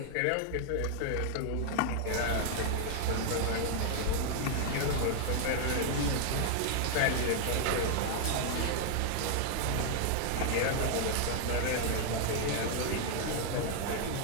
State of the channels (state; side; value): different; both; correlation 0.00